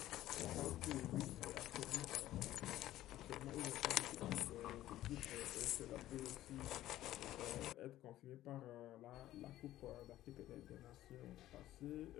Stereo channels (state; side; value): quieter; right; 14.2 dB